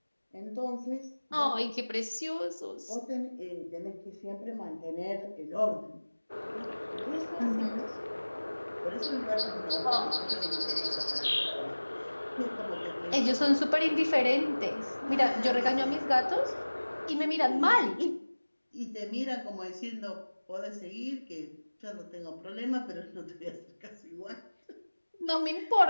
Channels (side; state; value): both; inverted; correlation -1.00